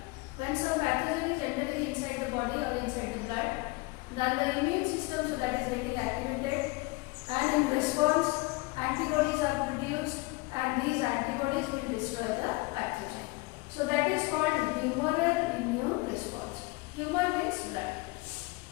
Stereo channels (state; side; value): quieter; right; 24.2 dB